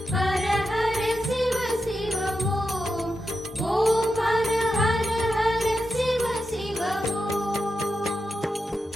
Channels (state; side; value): normal; both; correlation 0.88